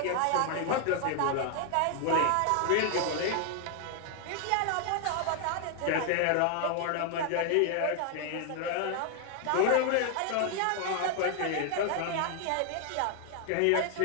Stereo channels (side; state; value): both; different; correlation 0.00